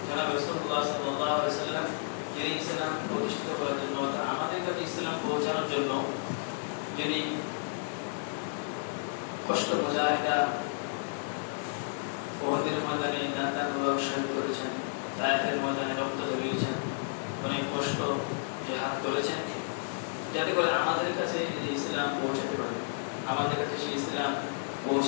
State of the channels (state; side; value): silent; right; digital silence